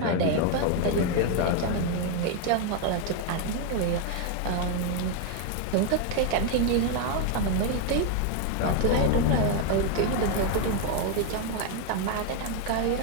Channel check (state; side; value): different; both; correlation 0.01